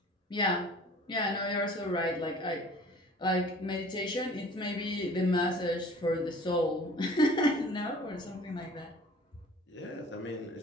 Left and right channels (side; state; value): both; normal; correlation 0.48